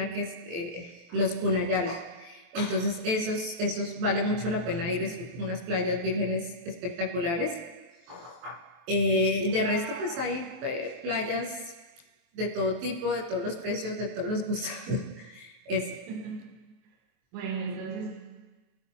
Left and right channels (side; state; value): left; late; 23 ms